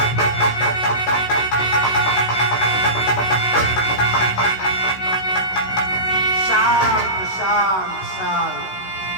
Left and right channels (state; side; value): late; right; 16 ms